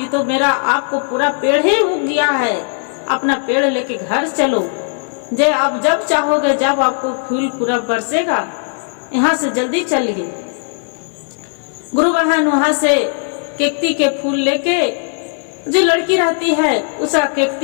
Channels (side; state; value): right; silent; digital silence